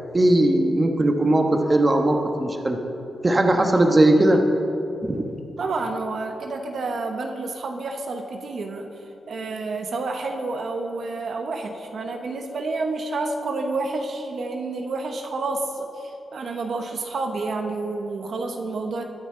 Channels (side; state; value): both; normal; correlation 0.91